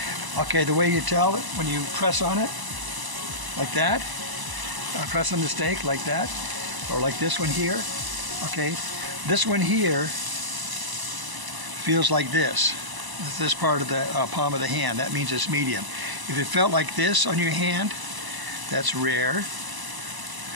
Okay, the way you tell it, when you press on it like that, press on the steak like that, or like this one here. Okay, this one here feels like this part of the palm of the hand. That means it's medium. If it felt like this on your hand, that's rare,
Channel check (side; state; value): left; late; 1.0 ms